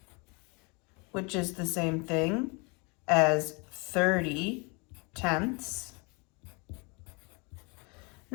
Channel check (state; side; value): quieter; right; 30.4 dB